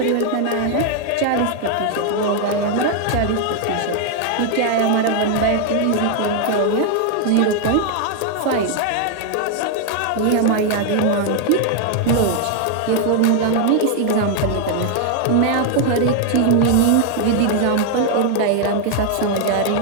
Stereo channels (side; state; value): both; different; correlation 0.00